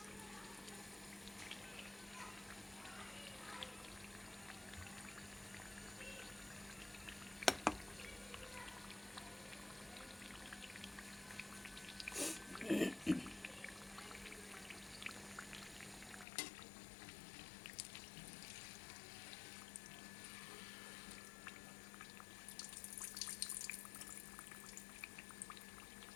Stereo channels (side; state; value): right; drops out; at 16.2 s